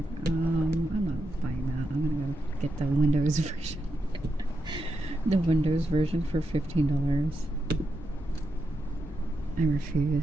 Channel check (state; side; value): normal; both; correlation 0.86